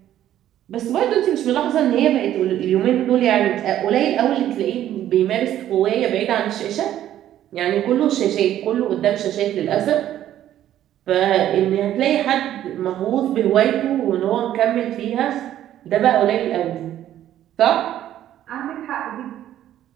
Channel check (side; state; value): left; quieter; 12.0 dB